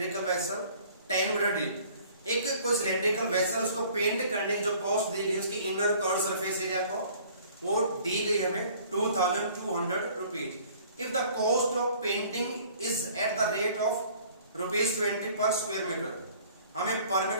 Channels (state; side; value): inverted; both; correlation -0.53